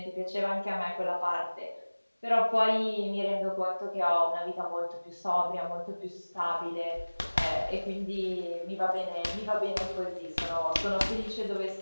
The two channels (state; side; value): inverted; both; correlation -1.00